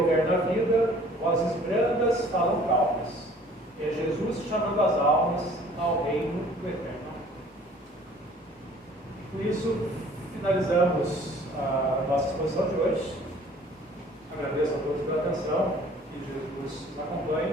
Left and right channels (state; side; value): normal; both; correlation 0.53